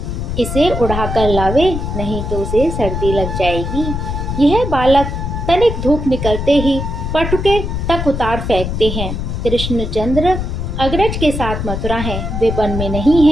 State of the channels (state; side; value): noise; left; rumble, 4 dB below the sound